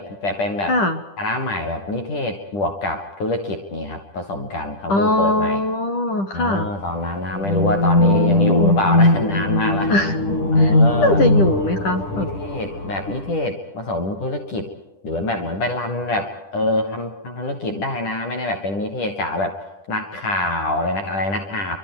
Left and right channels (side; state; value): right; late; 10 ms